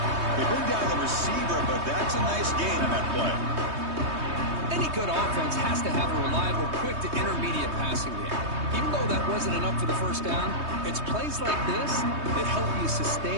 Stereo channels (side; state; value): left; late; 3.2 ms